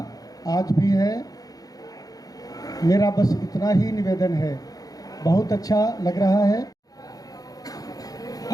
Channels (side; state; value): right; late; 0.18 ms